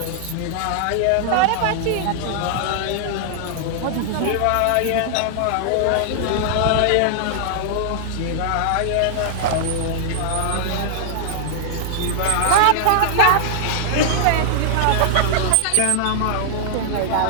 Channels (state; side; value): different; both; correlation -0.01